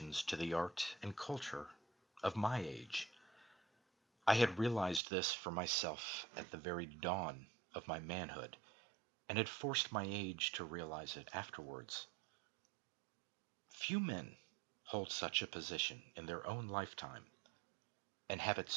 to the art and culture of my age. I had realized this for myself at the very dawn of my manhood, and had forced my age to realize it afterwards. Few men hold such a position in their own lifetime, and have it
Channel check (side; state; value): left; drops out; at 5.0 s